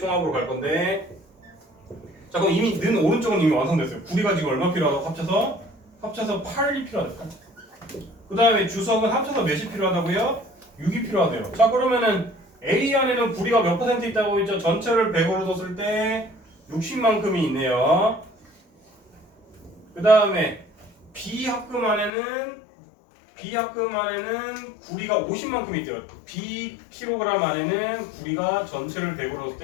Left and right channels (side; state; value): right; drops out; at 22.1 s